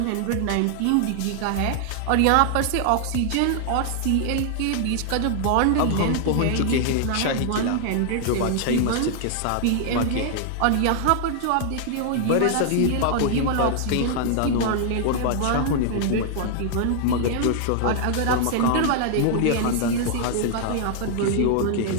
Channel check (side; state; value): both; different; correlation -0.01